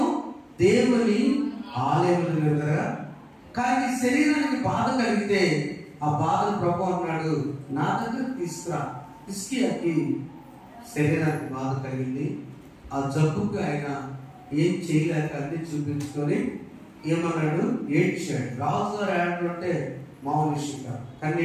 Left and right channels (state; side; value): identical; both; correlation 1.00